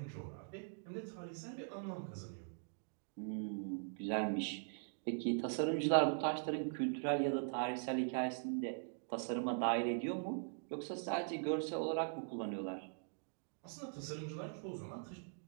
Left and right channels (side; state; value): left; silent; digital silence